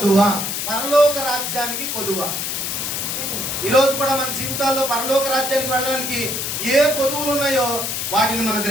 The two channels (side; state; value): left; noise; hiss, 2 dB below the sound